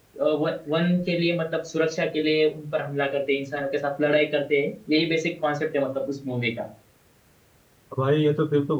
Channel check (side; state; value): both; identical; correlation 1.00